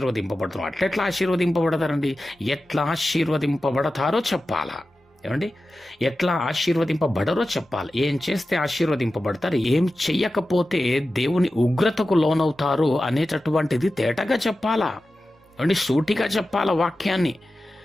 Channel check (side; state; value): both; normal; correlation 0.94